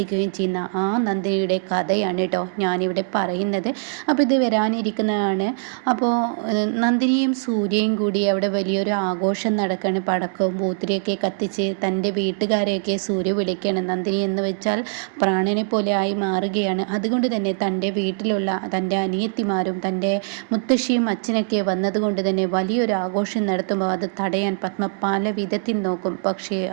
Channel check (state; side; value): silent; left; digital silence